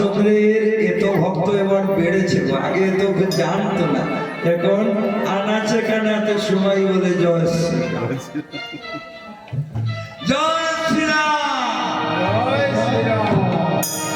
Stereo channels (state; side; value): identical; both; correlation 1.00